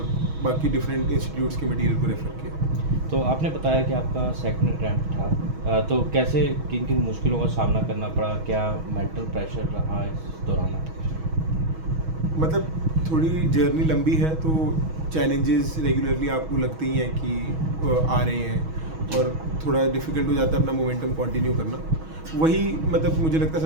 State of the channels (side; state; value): left; late; 6.2 ms